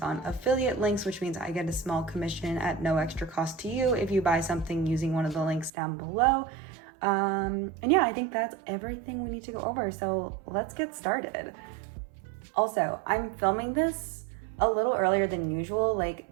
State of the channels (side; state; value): left; drops out; at 5.7 s